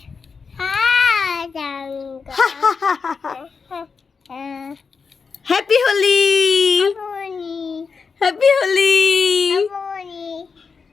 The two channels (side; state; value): right; quieter; 5.2 dB